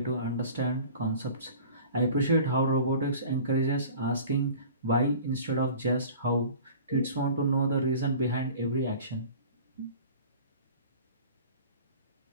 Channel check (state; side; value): inverted; both; correlation -0.44